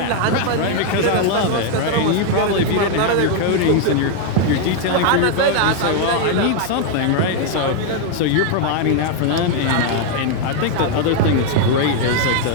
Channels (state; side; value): different; both; correlation 0.00